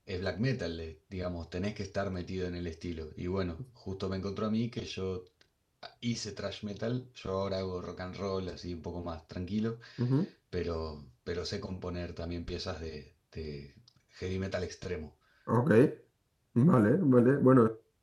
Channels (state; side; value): identical; both; correlation 1.00